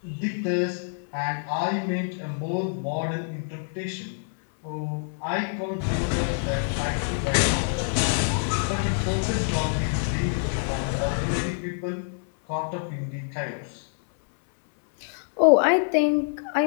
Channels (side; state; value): right; silent; 61 dB below the other